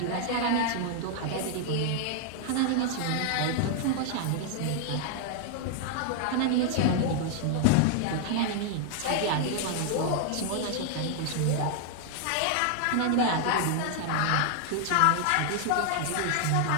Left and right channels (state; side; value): different; both; correlation 0.00